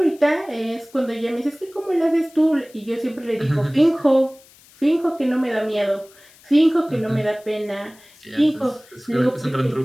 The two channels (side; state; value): left; noise; hiss, 26 dB below the sound